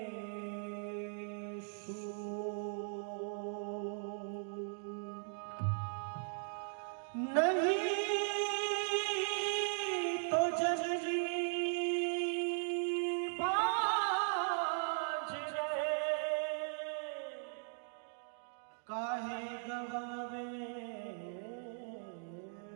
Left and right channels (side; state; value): left; silent; digital silence